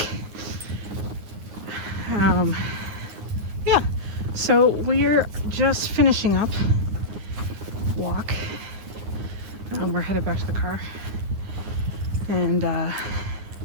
Yeah. So we're just finishing up walk. We're headed back to the car. And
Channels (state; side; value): late; left; 9.6 ms